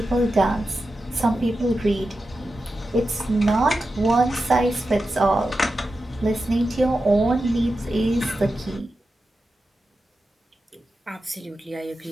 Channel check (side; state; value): both; normal; correlation 0.91